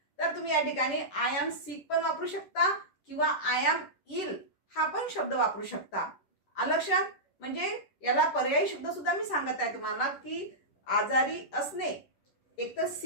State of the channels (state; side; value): late; right; 10 ms